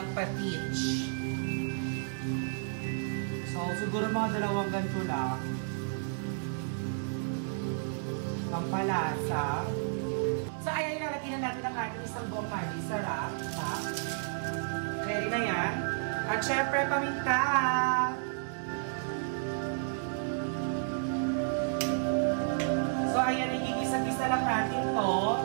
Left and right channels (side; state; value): left; silent; digital silence